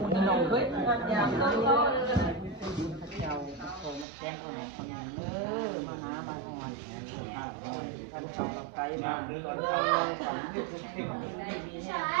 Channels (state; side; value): drops out; left; at 4.0 s